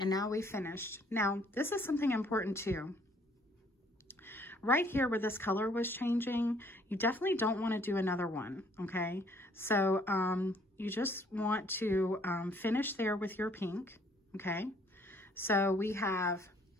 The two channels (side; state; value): both; normal; correlation 0.62